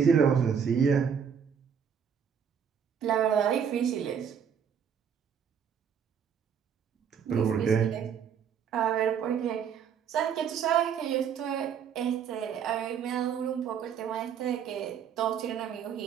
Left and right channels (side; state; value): left; quieter; 7.6 dB